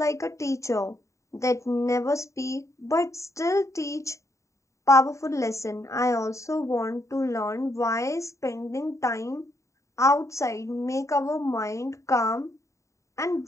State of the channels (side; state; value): right; late; 0.15 ms